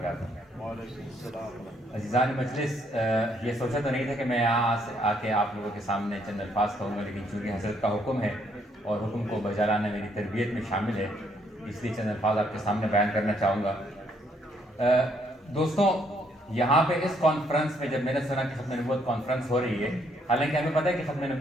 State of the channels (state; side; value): normal; both; correlation 0.70